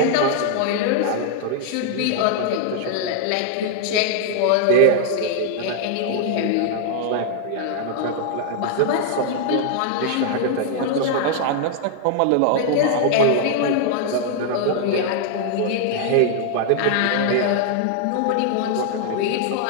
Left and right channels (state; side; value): different; both; correlation 0.00